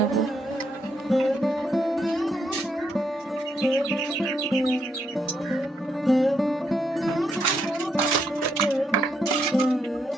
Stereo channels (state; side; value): normal; both; correlation 0.77